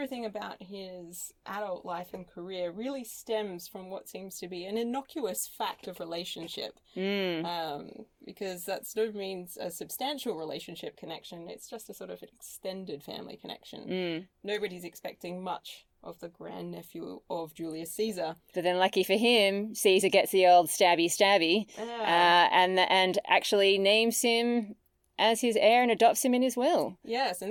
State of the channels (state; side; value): identical; both; correlation 1.00